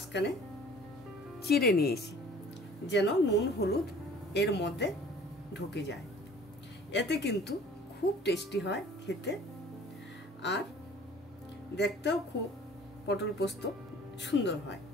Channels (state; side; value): normal; both; correlation 0.50